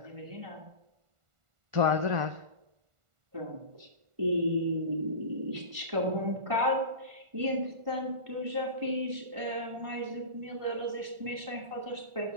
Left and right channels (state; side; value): late; left; 1.5 ms